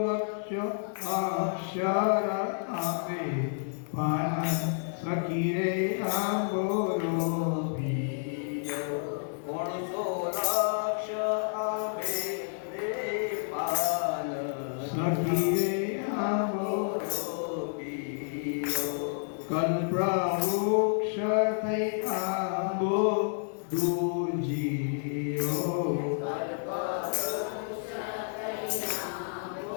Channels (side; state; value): right; silent; digital silence